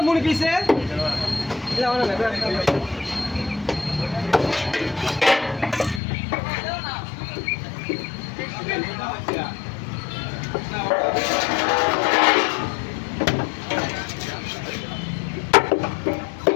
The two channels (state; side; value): drops out; right; at 6.0 s